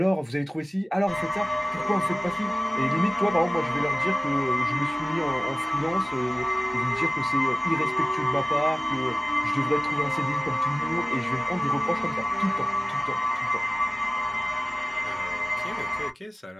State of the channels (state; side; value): normal; both; correlation 0.97